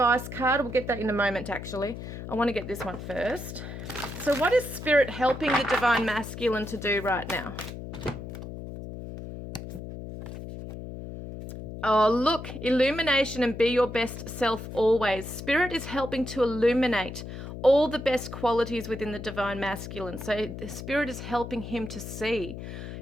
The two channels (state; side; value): noise; left; hum, 9 dB below the sound